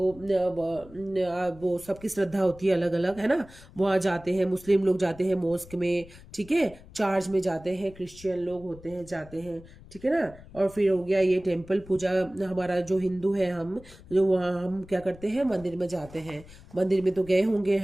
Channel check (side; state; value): left; noise; rumble, 20 dB below the sound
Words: वो सबकी श्रद्धा होती है अलग अलग, है ना। वहाँ जाते हैं, मुस्लिम लोग जाते हैं मॉस्क में, ठीक है, चर्च में जाते हैं, क्रिश्चियन लोग होते हैं जाते हैं, ठीक है ना। और फिर हो गया ये टेम्पल पूजा, हमारा जो हिंदू है हम, जो वहाँ हम क्या करते हैं, मंदिर में जाते हैं। मंदिर में तो गए होंगे,